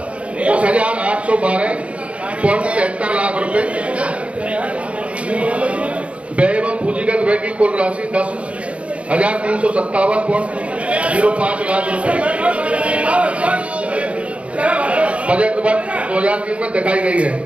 लाख रुपए। व्यय एवं पूंजीगत व्यय की कुल राशि 10,357.05 लाख रुपए बजट वर्ष 2003 में दिखाई गई है।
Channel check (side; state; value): left; late; 0.062 ms